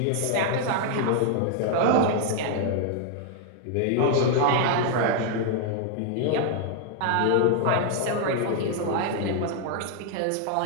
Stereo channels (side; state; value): both; different; correlation 0.00